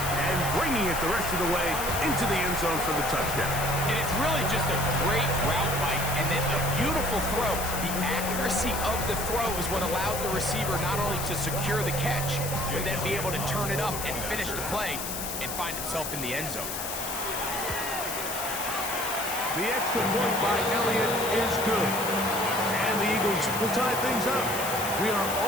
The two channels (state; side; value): noise; left; hiss, 5 dB below the sound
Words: and bringing it the rest of the way into the end zone for the touchdown. And it's really just a great route, Mike, and then a beautiful throw. The accuracy of the throw is what allowed the receiver not only to secure the catch, but then be able to turn it up and finish the play and find himself in the end zone. The extra point by Elliott is good. And the Eagles will tie things up. We are